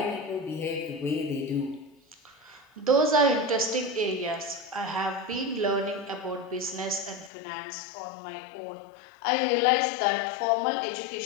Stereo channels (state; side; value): drops out; right; at 7.3 s